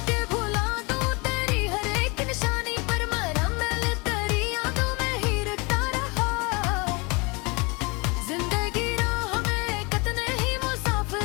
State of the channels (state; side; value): quieter; right; 28.4 dB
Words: कि भुला दूं तेरी हर एक निशानी, पर मरा मैं तेरी यादों में ही रखता रहा। जिंदगी राह में कितने ही